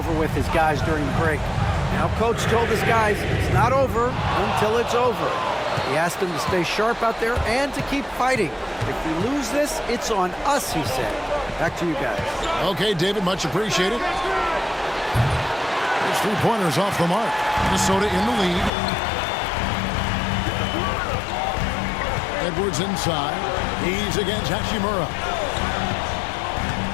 with his guys during the break. Now, Coach told his guys it's not over until it's over. He asked them to stay sharp out there and to keep fighting. If we lose this, it's on us, he said. Back to you guys. Okay, David, much appreciated. There's 3-pointers off the mark. Minnesota in the lead. Edwards inside. He's against Hachimura.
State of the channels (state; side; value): drops out; right; at 18.7 s